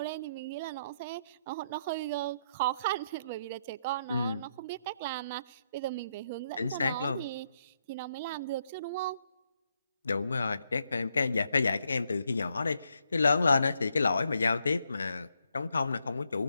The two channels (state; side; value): inverted; both; correlation -0.77